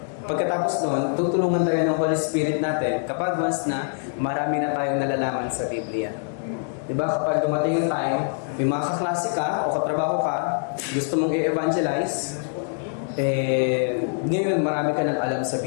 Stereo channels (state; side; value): silent; right; digital silence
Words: Pagkatapos noon, tutulungan tayo ng Holy Spirit natin kapag once na marami na tayong nalalaman sa Biblia. Diba? Kapag dumating yung time, may mga kaklase ka o katrabaho ka, gusto mong i-evangelize, ngayon marami ka nang alam sa